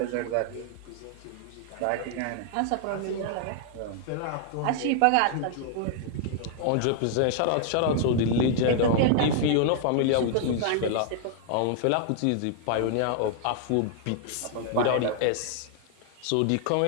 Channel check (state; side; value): different; both; correlation 0.00